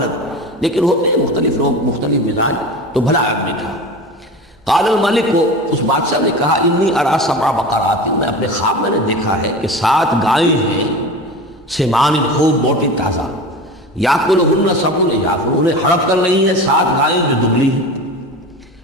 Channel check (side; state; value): both; normal; correlation 0.31